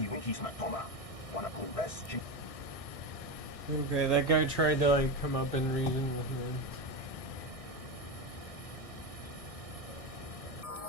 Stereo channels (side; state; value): right; late; 1.6 ms